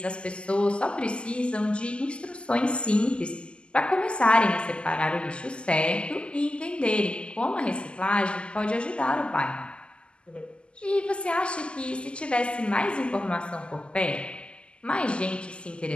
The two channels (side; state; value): right; late; 0.051 ms